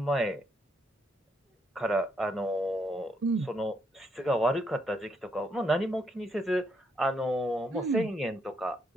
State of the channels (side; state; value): both; normal; correlation 0.76